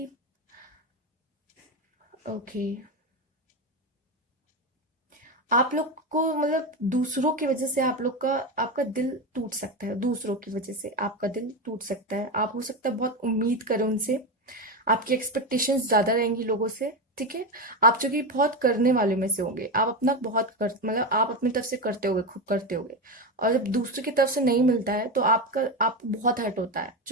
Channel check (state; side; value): normal; both; correlation 0.16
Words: ओके, आप लोग को मतलब दूसरों की वजह से आप लोग का आपका दिल टूट सकता है, दूसरों की वजह से आपका दिल टूट सकता है, आप हो सकता है बहुत उम्मीद करें उनसे, आपकी एक्सपेक्टेशंस ज्यादा रहेंगी लोगों से, ठीक है। आप जो कि बहुत करने वाले में से होंगे, आप अपना बहुत कर मतलब आप अपनी तरफ से करते होगे, खूब करते होगे, और जब दूसरे की तरफ से नहीं मिलता है तो आपको बहुत हर्ट होता है,